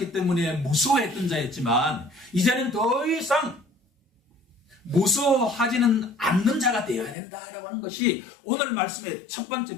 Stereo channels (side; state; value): right; drops out; at 7.2 s